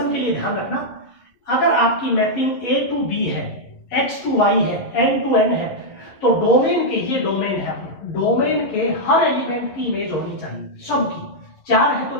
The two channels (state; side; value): late; right; 11 ms